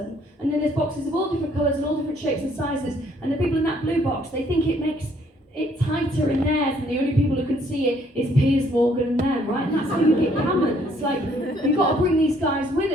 And then there's boxes of all different colours and all different shapes and sizes. And the people in that blue box, they think it makes it tighter in theirs and the only people who can see it is Piers Morgan and them, right? And that's how you get gammon. It's like, we've got to bring these guys with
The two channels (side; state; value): both; normal; correlation 0.65